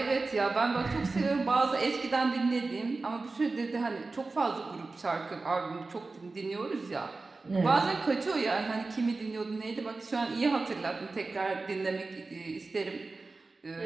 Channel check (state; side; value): quieter; left; 3.7 dB